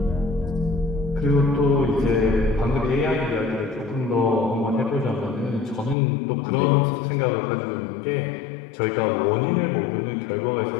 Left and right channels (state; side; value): drops out; right; at 6.0 s